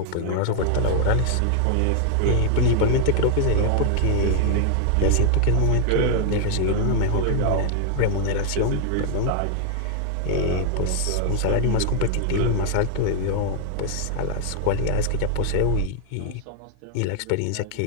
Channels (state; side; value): different; both; correlation 0.00